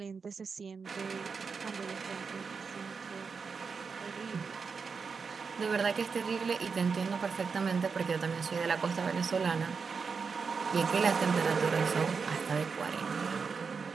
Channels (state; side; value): quieter; left; 5.3 dB